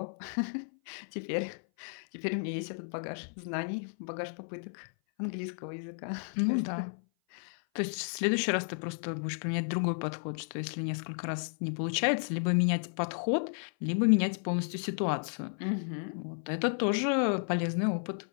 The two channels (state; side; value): silent; right; 56 dB below the other